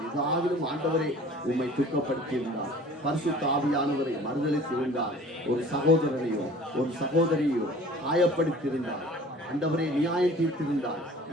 இதாகிலும் ஆண்டவரை உம்மை துக்கப்படுத்தி இருந்தால், பரிசுத்த ஆவியானவரை மறுதளித்து இருந்தால், ஒரு சகோதரனையோ ஒரு சகோதரியோ காயப்படுத்தியிருந்தால், ஆண்டவரே நியாயம் தீர்த்திருந்தால்,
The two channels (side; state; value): both; normal; correlation 0.47